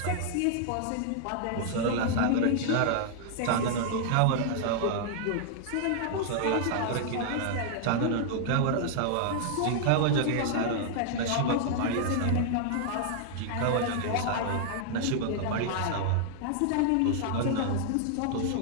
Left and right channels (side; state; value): both; different; correlation -0.01